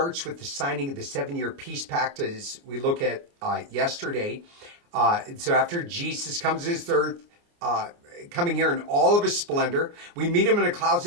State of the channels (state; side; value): late; left; 29 ms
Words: with the signing of the 7-year peace pact, as we look at yesterday. So after Jesus comes to this earth, coming here in all of his splendor, we meet him in the clouds